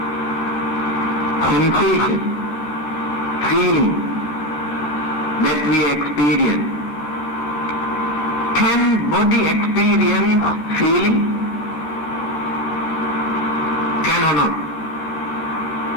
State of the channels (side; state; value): right; late; 14 ms